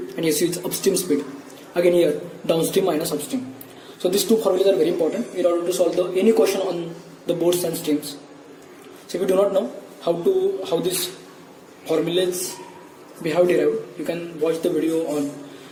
and su is upstream speed. Again here, downstream minus upstream. So these two formulas are very important in order to solve any question on the boats and streams. So if you do not know how these formulas we have derived, you can watch the video on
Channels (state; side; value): identical; both; correlation 1.00